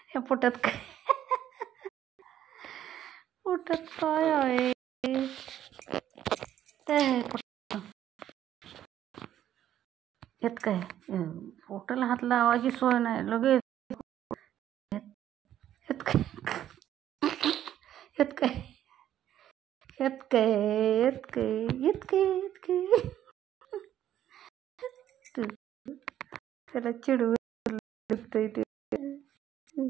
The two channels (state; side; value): quieter; left; 11.3 dB